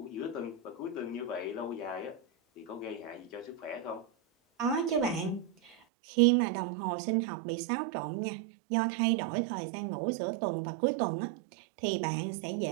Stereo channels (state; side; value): drops out; left; at 5.8 s